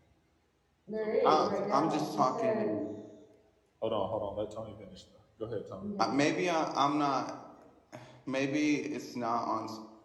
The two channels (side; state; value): both; identical; correlation 1.00